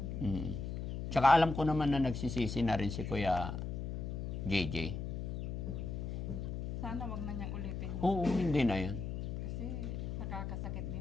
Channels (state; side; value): noise; left; hum, 4 dB below the sound